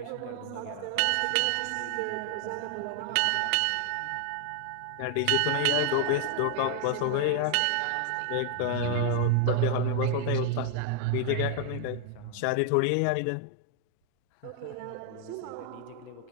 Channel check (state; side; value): different; both; correlation 0.00